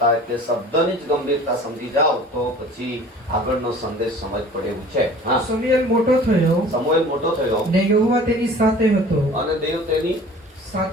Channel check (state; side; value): normal; both; correlation 0.46